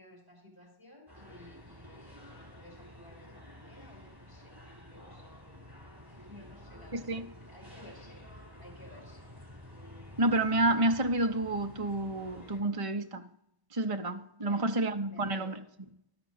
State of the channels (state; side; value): late; left; 1.1 ms